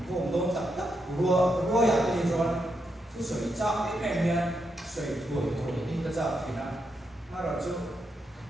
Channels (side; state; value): both; normal; correlation 0.82